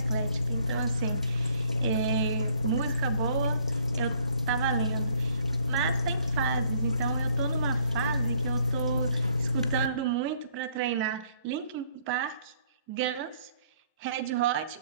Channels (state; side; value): inverted; both; correlation -0.63